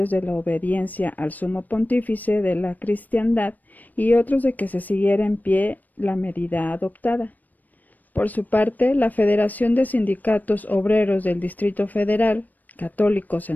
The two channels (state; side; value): late; right; 0.084 ms